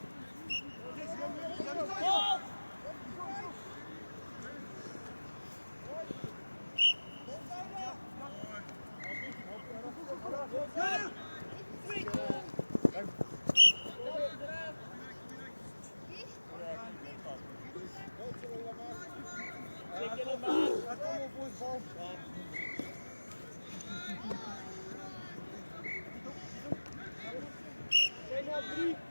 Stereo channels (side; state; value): both; inverted; correlation -1.00